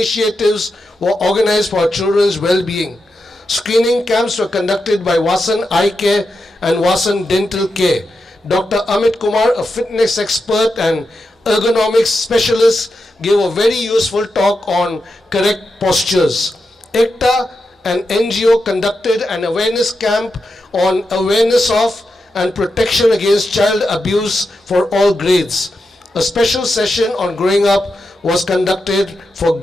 were organized for our children's well-being. Screening camps were conducted by Vasan Eye Care and Vasan Dental Care. Dr. Amit Kumar, a fitness expert and ergonomics specialist, gave a very useful talk on correct postures. ECTA, an NGO, conducted an awareness camp on awareness of and protection against child abuse for all grades. A special session on growing up was conducted for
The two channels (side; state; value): both; normal; correlation 0.87